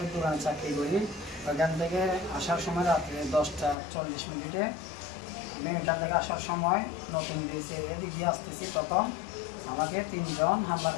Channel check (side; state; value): right; drops out; at 3.8 s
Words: দোকানে চাকরি করি। ওইখান থেকে আসার সময় রাত্রে 10:40 আমি ওইখান থেকে আসার সময় নতুন ব্রিজে এদিক দিয়ে আসতেছি, তখন আমাকে 3 জন